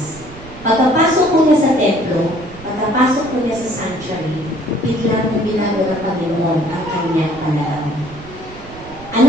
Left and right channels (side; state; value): right; noise; rumble, 18 dB below the sound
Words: Pagkapasok ko niya sa templo, pagkapasok ko niya sa sanctuary, biglang binago ng Panginoon ang kanyang panahon.